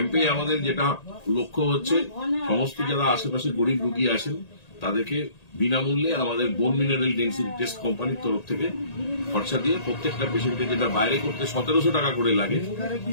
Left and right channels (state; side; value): late; right; 1.8 ms